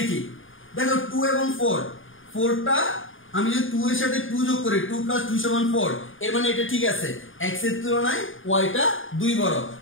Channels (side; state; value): right; late; 0.58 ms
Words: দেখো 2 এবং 4, 4টা আমি যদি 2 এর সাথে 2 যোগ করি 2 + 2 = 4, এর মানে এটা ঠিক আছে, x এর তুলনায় y টা 2 বড়,